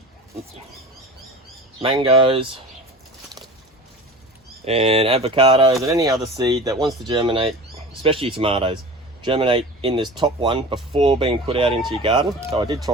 mangoes and avocados and any other seed that wants to germinate, especially tomatoes, germinate in this top one before being put out into your garden. So I did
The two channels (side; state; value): both; normal; correlation 0.36